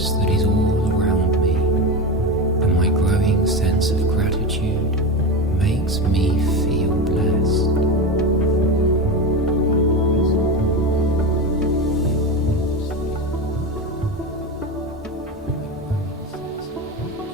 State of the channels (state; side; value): normal; both; correlation 0.20